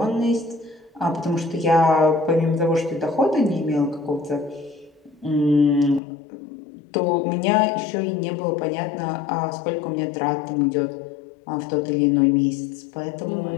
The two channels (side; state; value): right; drops out; at 6.0 s